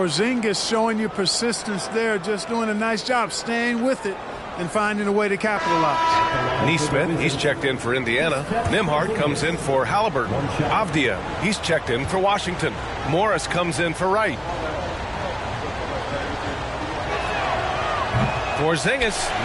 showing you persistence there, just doing a nice job staying with it and finding a way to capitalize. Neesmith, he's checked in for Indiana. Nembhard comes in for Halliburton. Avdia, he's checked in for Washington. Morris comes in for Wright. Porzingis,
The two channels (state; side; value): identical; both; correlation 1.00